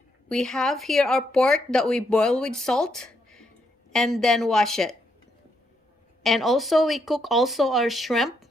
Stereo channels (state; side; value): normal; both; correlation 0.77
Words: We have here our pork that we boil with salt and then wash it. And also we cook also our shrimp.